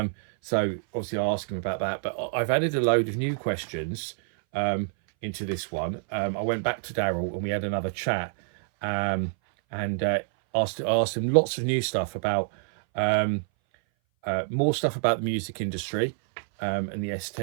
So, obviously, I asked him about that. But I've added a load of new questions into this one. I went back to Daryl and we had another chat and asked him lots of new stuff about, more stuff about the music industry and the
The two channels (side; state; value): left; silent; 58 dB below the other